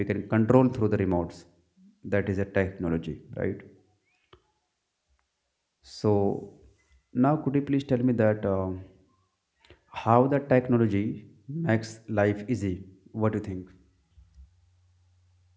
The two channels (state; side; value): identical; both; correlation 1.00